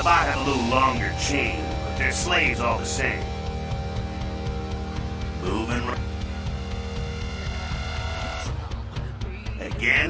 have a little longer chain, but they're slaves all the same. Moving right.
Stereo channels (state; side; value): identical; both; correlation 1.00